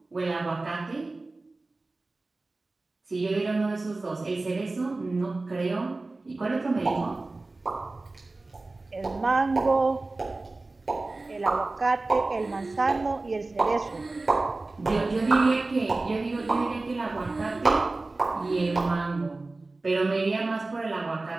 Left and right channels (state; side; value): quieter; left; 3.2 dB